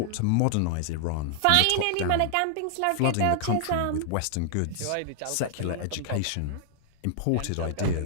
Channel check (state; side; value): different; both; correlation -0.01